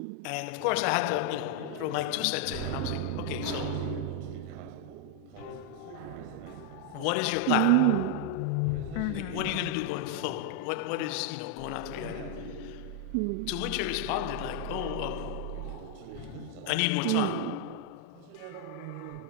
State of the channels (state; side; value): different; both; correlation 0.00